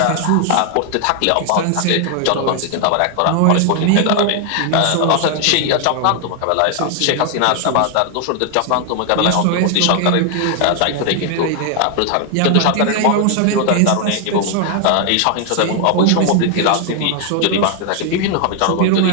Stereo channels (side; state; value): both; different; correlation 0.00